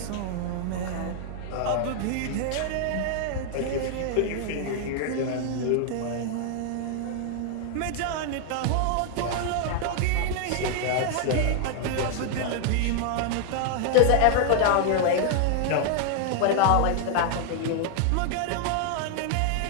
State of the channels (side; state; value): both; different; correlation 0.00